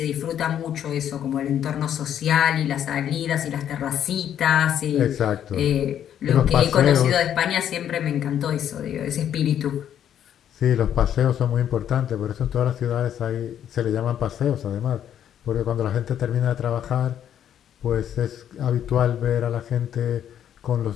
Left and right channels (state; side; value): quieter; right; 10.0 dB